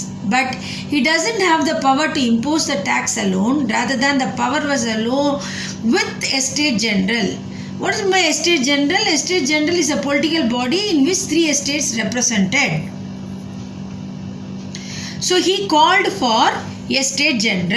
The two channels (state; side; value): identical; both; correlation 1.00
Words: But he doesn't have the power to impose the tax alone. Rather than the power was alone with Estate General. What is my Estate General? Estate General is a political body in which three estates represented. So he called for Estate